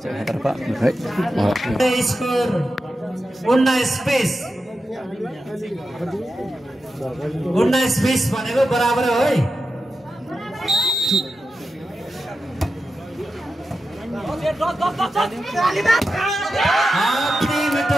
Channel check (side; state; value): both; normal; correlation 0.90